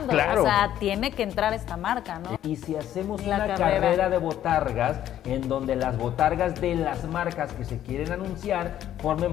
Claro. o sea, tiene que entrar esta marca, ¿no? Y si hacemos La una carrera. carrera de botargas, en donde las botargas de las marcas que se quieren anunciar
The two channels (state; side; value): quieter; right; 11.6 dB